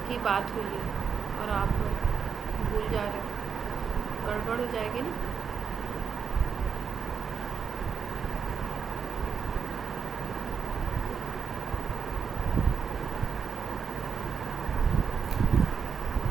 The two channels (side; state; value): left; quieter; 6.4 dB